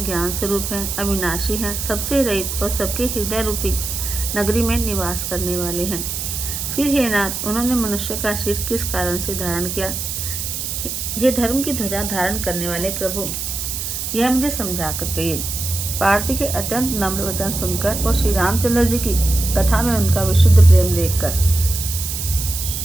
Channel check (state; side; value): noise; right; hiss, 4 dB below the sound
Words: ज्ञान स्वरूप हैं, अविनाशी हैं, सबसे रहित और सबके हृदय रूपी नगरी में निवास करने वाले हैं। फिर हे नाथ, उन्होंने मनुष्य का सिर किस कारण से धारण किया? हे धर्म की ध्वजा धारण करने वाले प्रभु, यह मुझे समझा कर कहिए। पार्वती के अत्यंत नम्र वचन सुनकर और श्री रामचंद्र जी की कथा में उनका विशुद्ध प्रेम देखकर